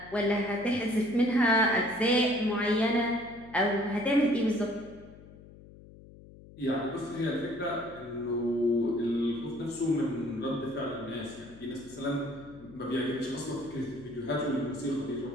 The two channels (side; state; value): left; noise; hum, 20 dB below the sound